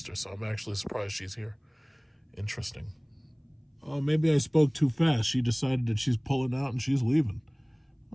so I'm actually surprised she's here. Interesting. Oh, maybe I spoke too fast. She decided that she's pulling out and she's leaving.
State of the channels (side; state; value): both; identical; correlation 1.00